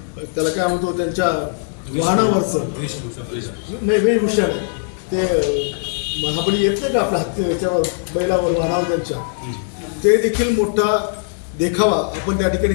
त्याला काय म्हणतो त्यांच्या वाहनावरचं नाही वेशभूषा ते महाबली येत नाही का आपल्या हत्ती याच्यावर बैलावर वाहनावर त्यांच्या, ते देखील मोठा देखावा आपण त्या ठिकाणी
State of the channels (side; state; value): right; silent; digital silence